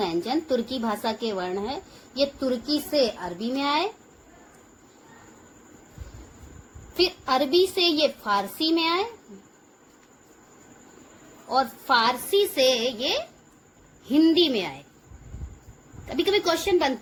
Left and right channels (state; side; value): identical; both; correlation 1.00